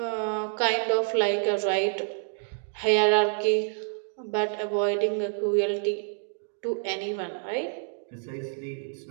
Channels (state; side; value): silent; left; digital silence